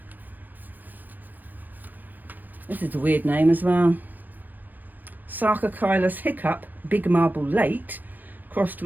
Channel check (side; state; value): left; late; 0.085 ms